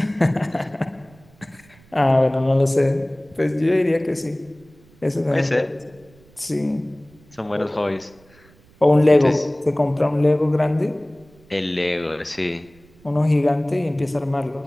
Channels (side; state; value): right; noise; rumble, 28 dB below the sound